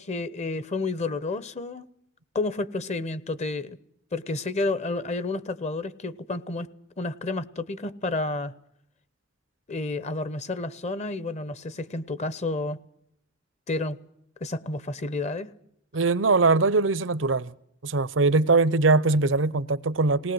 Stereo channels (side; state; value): both; normal; correlation 0.06